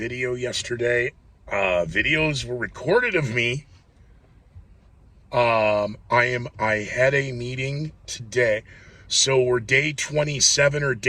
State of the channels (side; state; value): both; identical; correlation 1.00